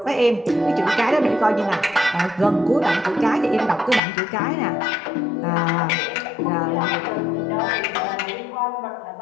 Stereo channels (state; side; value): drops out; right; at 4.0 s